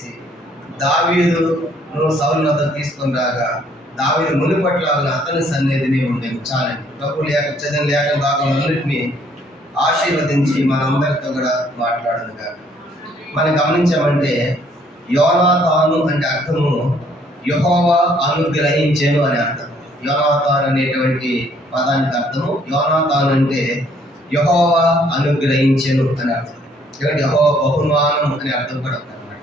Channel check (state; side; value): normal; both; correlation 0.64